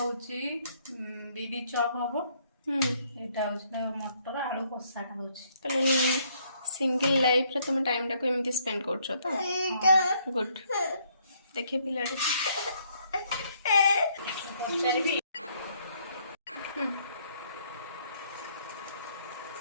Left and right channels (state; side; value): inverted; both; correlation -0.68